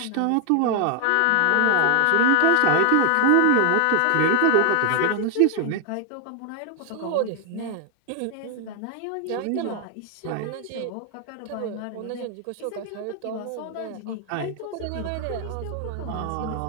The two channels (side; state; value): both; different; correlation 0.01